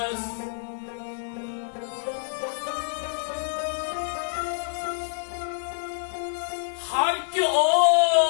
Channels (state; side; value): silent; right; 60 dB below the other